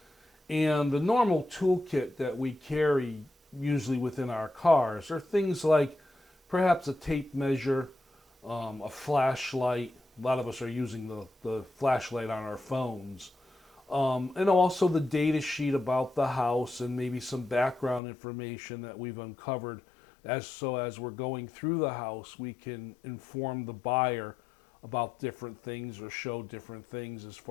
And the normal toolkit that we carry, usually within our cars, are things like perhaps a tape measure, a flashlight. A lot of us are using the flashlight on our phones. And also the data sheet about the house and maybe some background information that we've uncovered. As we're going through the house, we can inform the buyer about different things or show different things as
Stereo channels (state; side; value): drops out; right; at 18.0 s